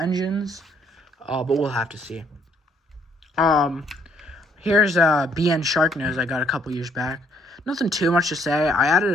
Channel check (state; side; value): normal; both; correlation 0.66